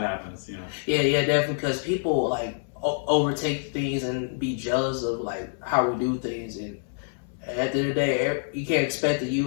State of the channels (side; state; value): right; silent; 61 dB below the other